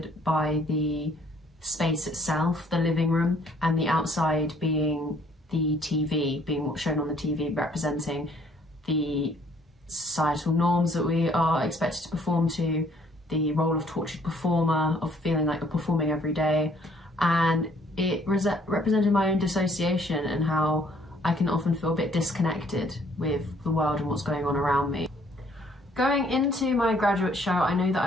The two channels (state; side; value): normal; both; correlation 0.63